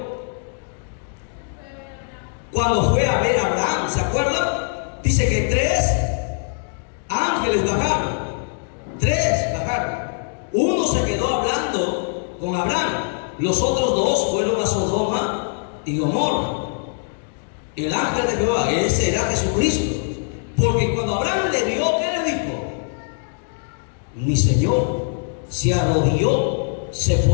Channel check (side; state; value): right; silent; 64 dB below the other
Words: Cuando fue a ver a Abraham, ¿se acuerdan? Dice que 3 ángeles bajaron. 3 bajaron. Uno se quedó hablando con Abraham. Los otros 2 fueron a Sodoma y Gomorra. El ángel de Jehová, ese era Jesucristo. Porque cuando Abraham le vio, ¿qué le dijo? Mi Señor. Se arrodilló, se